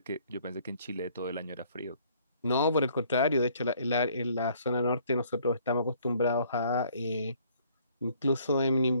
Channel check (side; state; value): both; inverted; correlation -0.61